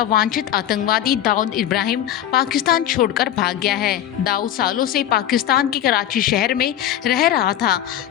वांछित आतंकवादी दाऊद इब्राहिम पाकिस्तान छोड़कर भाग गया है। दाऊद सालों से पाकिस्तान के कराची शहर में रह रहा था।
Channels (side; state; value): right; quieter; 11.3 dB